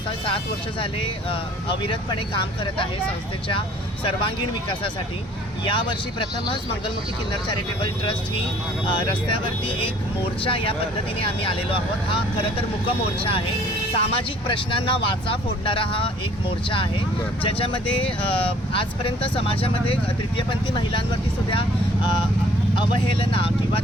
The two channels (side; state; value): both; normal; correlation 0.56